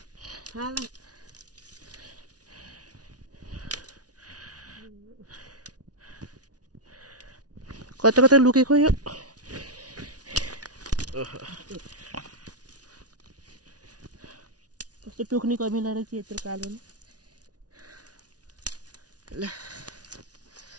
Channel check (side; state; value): left; late; 0.68 ms